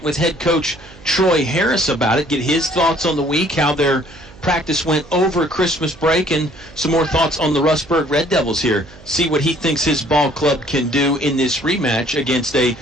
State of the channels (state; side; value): noise; right; hum, 22 dB below the sound